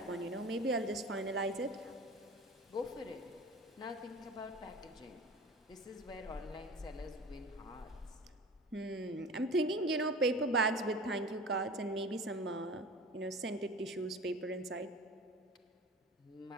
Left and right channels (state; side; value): normal; both; correlation 0.38